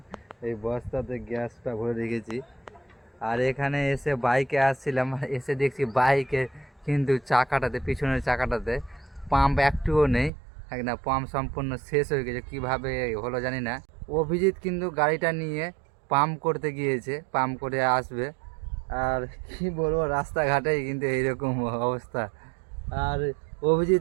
এই বস্তাতে গ্যাসটা ভরে রেখেছি। আর এখানে এসে বাইকে আসছিলাম, এসে দেখছি বাইকে কিন্তু চাকাটাতে, পিছনের চাকাটাতে পাম্প একটুও নেই। না, পাম্প সম্পূর্ণ শেষ হয়ে গেছে, কীভাবে হলো জানি না। অভিজিৎ কিন্তু গাড়িটা নিয়ে পাম্প করতে গিয়েছে, পাম্প করে আসবে। আর কি বলবো, রাস্তাঘাটে কিন্তু এইরকম অবস্থা। আর অভিজিৎ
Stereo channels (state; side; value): drops out; left; at 10.3 s